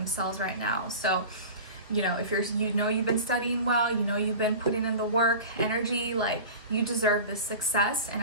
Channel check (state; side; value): inverted; both; correlation -0.34